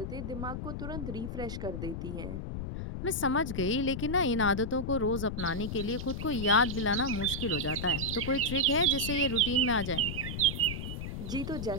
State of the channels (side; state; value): left; noise; rumble, 5 dB below the sound